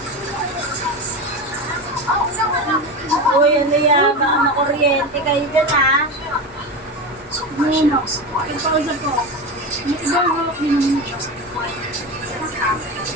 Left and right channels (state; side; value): normal; both; correlation 0.22